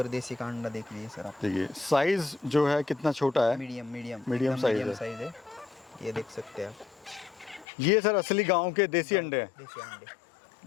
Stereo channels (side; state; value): right; drops out; at 7.7 s